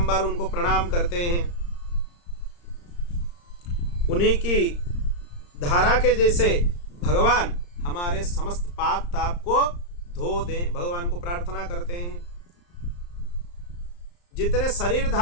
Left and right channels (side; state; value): right; late; 34 ms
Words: उनको प्रणाम करते हैं। उन्हीं की धारा के जैसे भगवान हमारे समस्त पाप ताप को धो दें, भगवान को प्रार्थना करते हैं। जितने